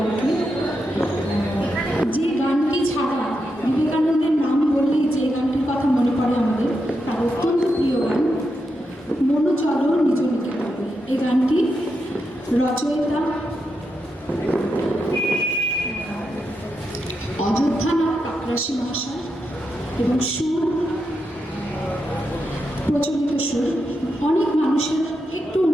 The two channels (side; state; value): both; normal; correlation 0.85